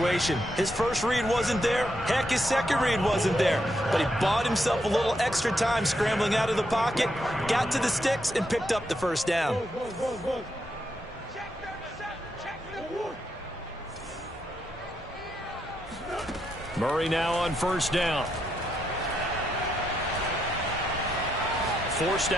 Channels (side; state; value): both; normal; correlation 0.80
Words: His first read wasn't there. Heck, his second read wasn't there. But he bought himself a little extra time scrambling out of the pocket, got to the sticks, and picked up the 1st down. Murray now on 1st down. Forced